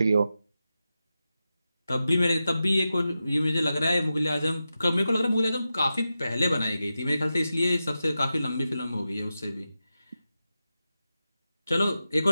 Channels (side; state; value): both; inverted; correlation -0.91